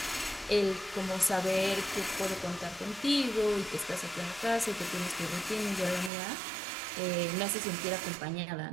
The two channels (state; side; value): drops out; left; at 6.1 s